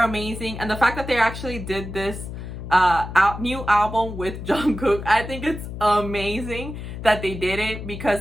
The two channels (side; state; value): left; noise; hum, 9 dB below the sound